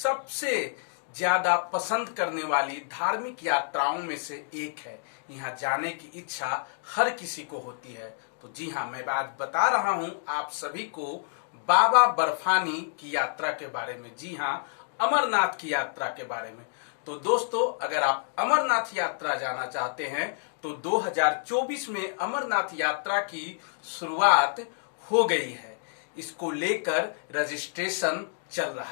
ज्यादा पसंद करने वाली धार्मिक यात्राओं में से एक है। यहाँ जाने की इच्छा हर किसी को होती है। तो जी हाँ, मैं आज बता रहा हूं आप सभी को बाबा बर्फानी की यात्रा के बारे में। जी हाँ, अमरनाथ की यात्रा के बारे में। तो दोस्तों, अगर आप अमरनाथ यात्रा जाना चाहते हैं तो 2024 में अमरनाथ यात्रा की शुरुआत हो गई है। इसको लेकर रजिस्ट्रेशन चल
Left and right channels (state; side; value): silent; right; digital silence